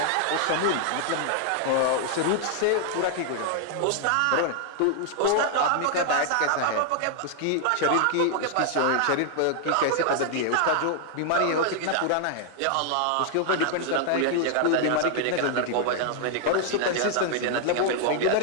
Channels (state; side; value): different; both; correlation 0.00